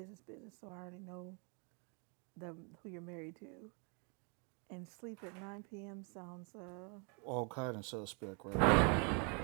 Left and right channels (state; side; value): quieter; left; 36.0 dB